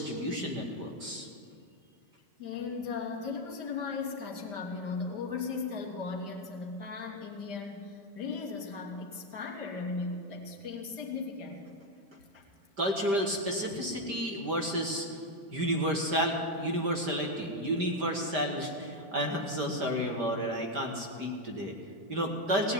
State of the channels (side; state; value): left; late; 5.0 ms